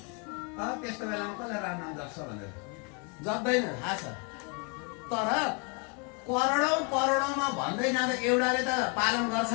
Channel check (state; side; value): quieter; right; 34.3 dB